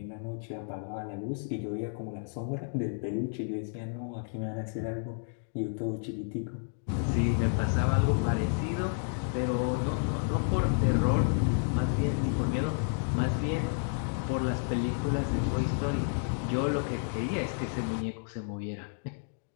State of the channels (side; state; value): right; silent; digital silence